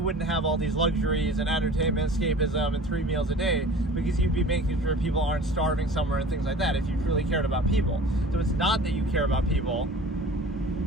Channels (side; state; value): both; normal; correlation 0.42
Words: have all these luxuries and entertainment, escapism, and 3 meals a day, because you'd be making sure people aren't starving somewhere and things like that if you truly cared about people. So it's not that you care about people,